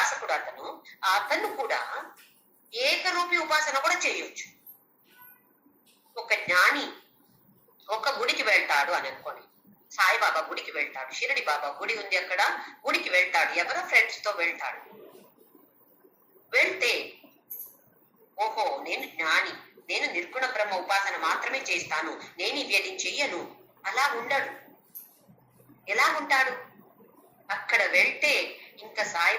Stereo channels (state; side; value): identical; both; correlation 1.00